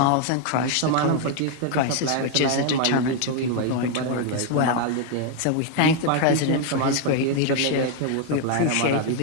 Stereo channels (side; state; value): both; different; correlation 0.00